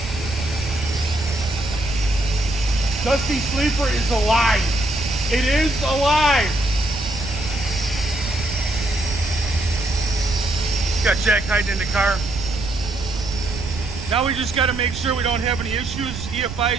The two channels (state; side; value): noise; right; rumble, 8 dB below the sound